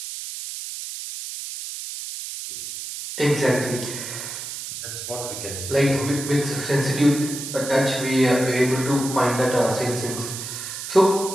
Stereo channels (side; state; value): right; noise; hiss, 8 dB below the sound